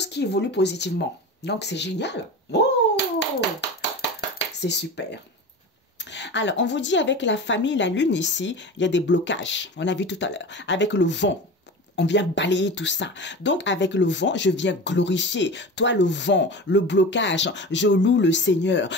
qui évoluent positivement. Donc, c'est génial. Oh, c'est super. Alors, on vous dit avec la famille, la lune ici, il y a des blocages. On a vu tout à l'heure. Avec le vent. On vient balayer tout ça. Donc, avec le vent, je viens glorifier. Toi, le vent, le blocage, je loue le Seigneur.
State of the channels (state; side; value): normal; both; correlation 0.31